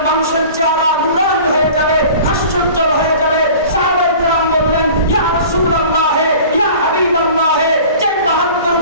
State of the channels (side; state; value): both; inverted; correlation -0.43